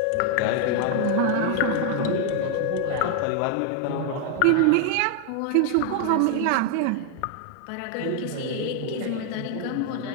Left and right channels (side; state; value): both; different; correlation 0.00